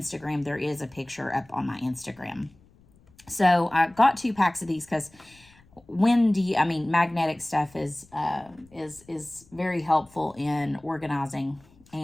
there is a picture up on my Instagram. So I got 2 packs of these because magnetic stuff is very helpful in organizing,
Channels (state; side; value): noise; left; rumble, 28 dB below the sound